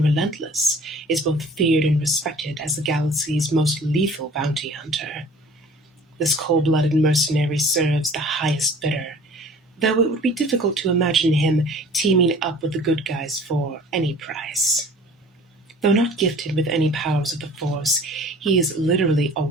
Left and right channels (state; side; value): normal; both; correlation 0.47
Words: relentless, is both feared and respected as the galaxy's most lethal bounty hunter. This cold-blooded mercenary serves the highest bidder, though it would be difficult to imagine him teaming up with the good guys for any price. Though not gifted with any powers of the Force, he is literally a